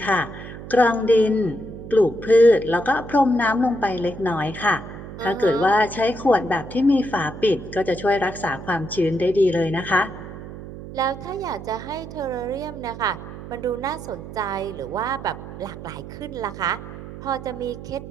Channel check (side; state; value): right; noise; hum, 12 dB below the sound